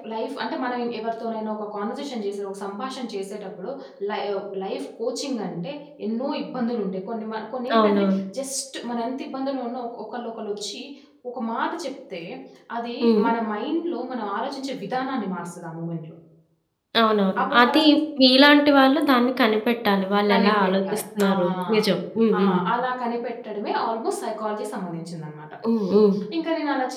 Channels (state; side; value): identical; both; correlation 1.00